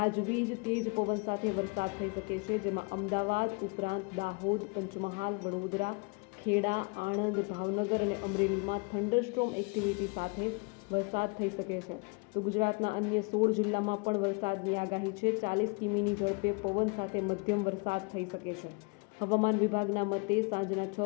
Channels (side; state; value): right; quieter; 32.4 dB